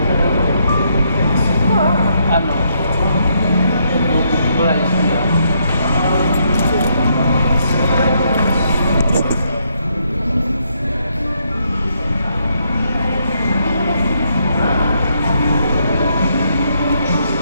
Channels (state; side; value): inverted; both; correlation -0.75